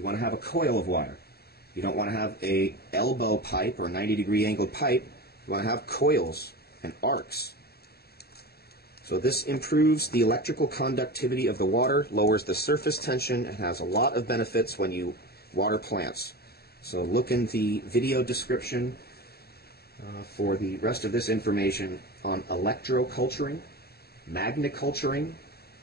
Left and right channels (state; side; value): late; right; 0.46 ms